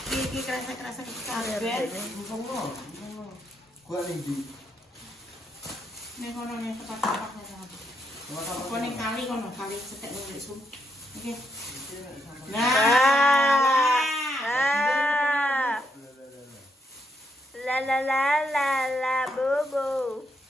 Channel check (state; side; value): normal; both; correlation 0.78